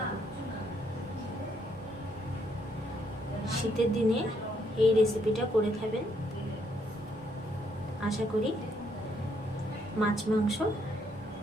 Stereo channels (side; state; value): both; normal; correlation 0.72